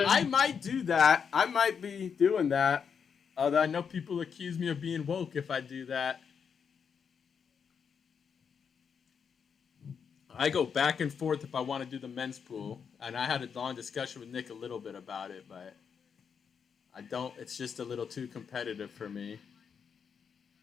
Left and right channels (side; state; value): right; quieter; 6.7 dB